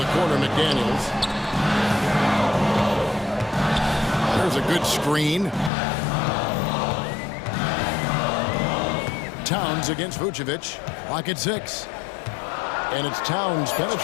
corner, McDaniels. There's a good screen. Towns against Vucevic. Lock at 6. And it's Towns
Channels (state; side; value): drops out; right; at 5.7 s